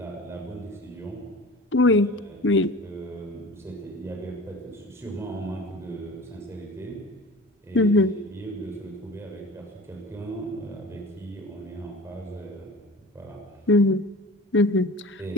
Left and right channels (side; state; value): both; normal; correlation 0.39